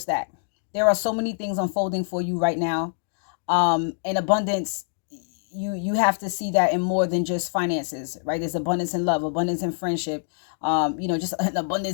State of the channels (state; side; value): silent; right; digital silence